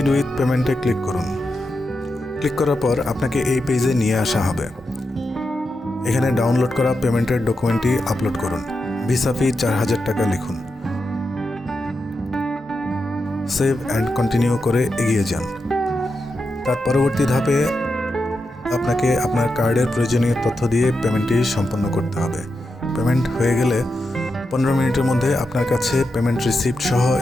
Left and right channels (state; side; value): normal; both; correlation 0.87